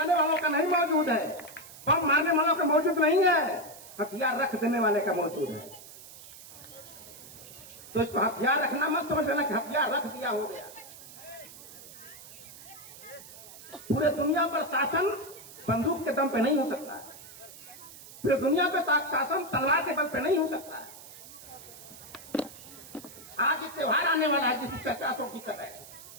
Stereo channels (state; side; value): noise; right; hiss, 17 dB below the sound